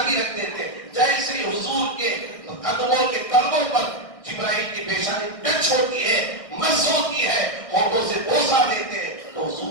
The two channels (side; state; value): right; late; 1.6 ms